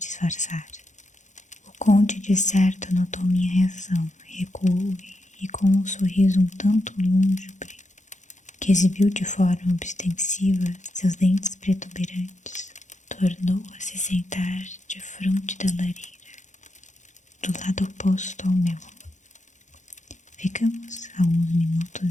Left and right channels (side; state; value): right; late; 0.35 ms